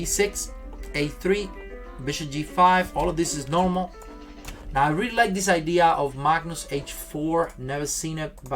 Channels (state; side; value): identical; both; correlation 1.00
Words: a3. Bishop g5, all of this is normal. Now I really like this idea of Magnus h4. Never seen it,